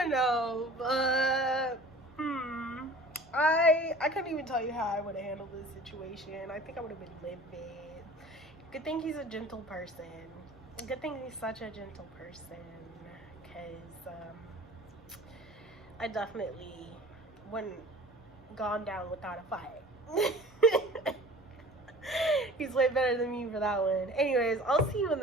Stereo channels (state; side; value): normal; both; correlation 0.44